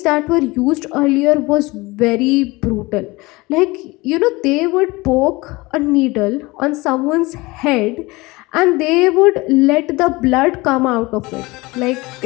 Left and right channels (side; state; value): right; quieter; 22.6 dB